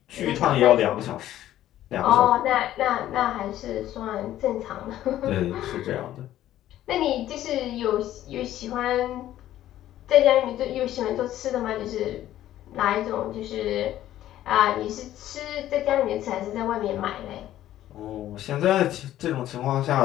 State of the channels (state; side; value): quieter; right; 13.0 dB